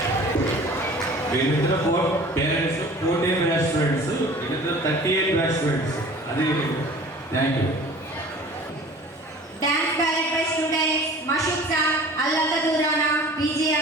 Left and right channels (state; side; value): normal; both; correlation 0.45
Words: వీళ్ళిద్దరు పేరెంట్స్ 14 బ్యాచ్ స్టూడెంట్స్, వీళ్ళిద్దరు 38 బ్యాచ్ స్టూడెంట్స్. అది thank you. Dance ballet by students Mashukta, Allaka Durana,